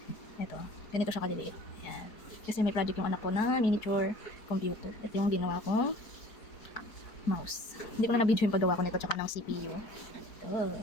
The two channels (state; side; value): late; right; 4.6 ms